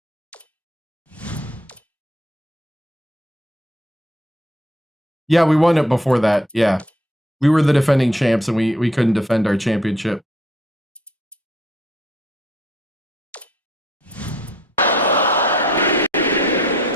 Yeah, we won it before that. Yeah. We were the defending champs and we couldn't defend our championship.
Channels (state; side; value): normal; both; correlation 0.63